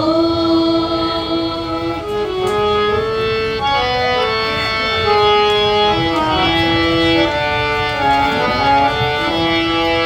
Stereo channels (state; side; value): identical; both; correlation 1.00